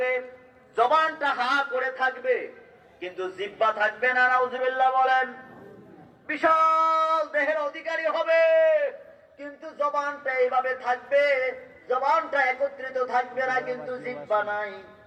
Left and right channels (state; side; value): identical; both; correlation 1.00